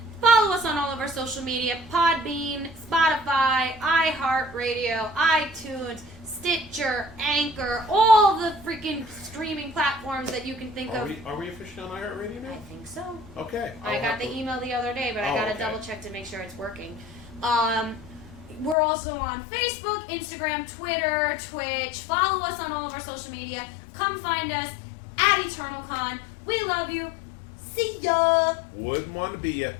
Follow us on all of our social media, Podbean, Spotify, iHeartRadio, iTunes, Stitcher, Anchor, all the freaking streaming platforms that you can think of. Are we officially on iHeartRadio now? I think so. Okay. I got the email the other day, but I got to double check to make sure it's working. We're also on Facebook, Instagram, Twitter, Twitch. Follow us on all of our social media. Come find us at EternalCon. We love you. See ya. Wouldn't want to be ya,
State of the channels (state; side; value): drops out; right; at 18.8 s